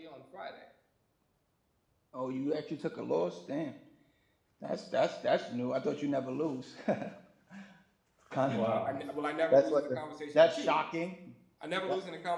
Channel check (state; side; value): identical; both; correlation 1.00